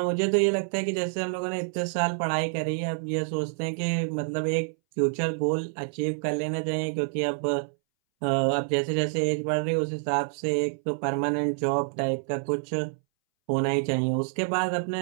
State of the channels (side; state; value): left; silent; 60 dB below the other